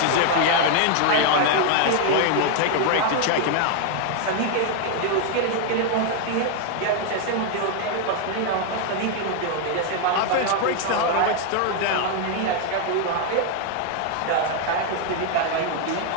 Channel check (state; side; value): different; both; correlation 0.00